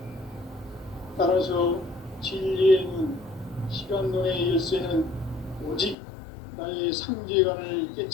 따라서 진리의 눈, 시간론의 열쇠는 오직 나의 상제관을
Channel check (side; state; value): right; drops out; at 6.0 s